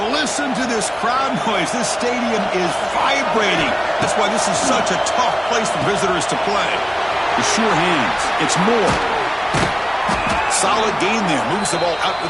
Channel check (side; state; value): both; identical; correlation 1.00